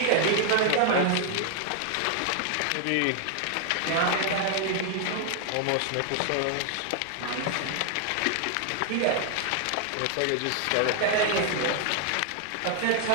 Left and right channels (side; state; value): both; different; correlation 0.00